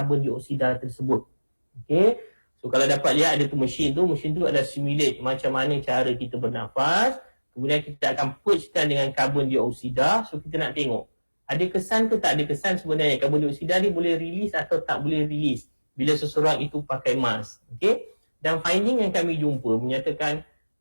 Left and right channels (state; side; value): inverted; both; correlation -1.00